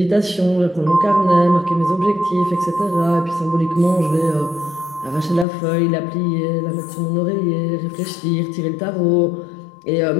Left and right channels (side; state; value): right; drops out; at 5.5 s